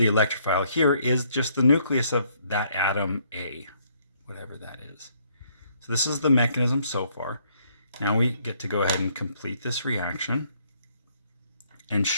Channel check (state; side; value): inverted; both; correlation -0.67